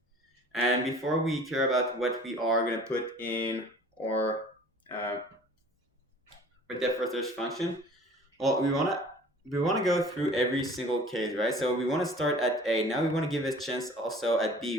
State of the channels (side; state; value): both; normal; correlation 0.48